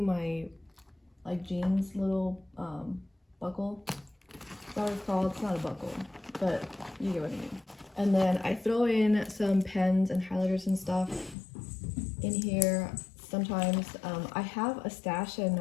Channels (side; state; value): right; drops out; at 11.4 s